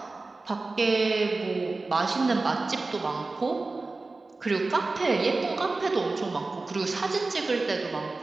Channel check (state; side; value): quieter; left; 3.5 dB